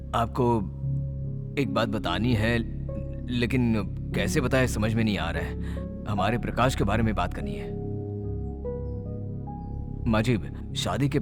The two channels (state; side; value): identical; both; correlation 1.00